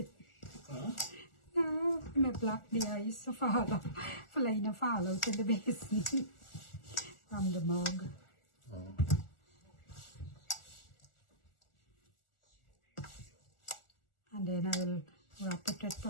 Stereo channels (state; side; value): late; right; 1.4 ms